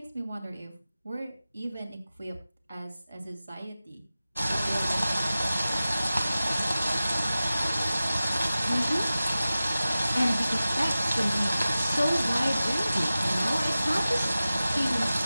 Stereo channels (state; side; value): inverted; both; correlation -0.96